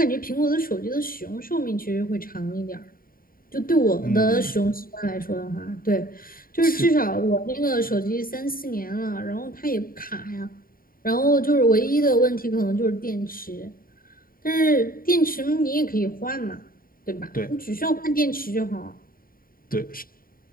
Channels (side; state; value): right; late; 0.42 ms